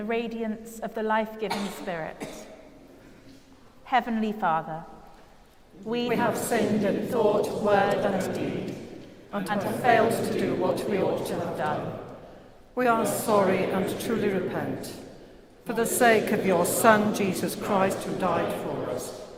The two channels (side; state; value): both; identical; correlation 1.00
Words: radiance of the life-giving Spirit. Heavenly Father, we have sinned in thought, word, and deed, and have failed to do what we ought to have done. We are sorry and truly repent. For the sake of your Son, Jesus Christ, who died for us,